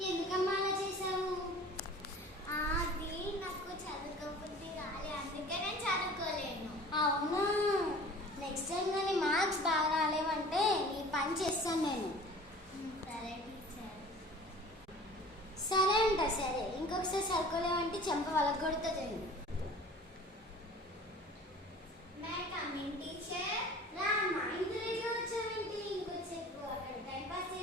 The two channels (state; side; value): normal; both; correlation 0.44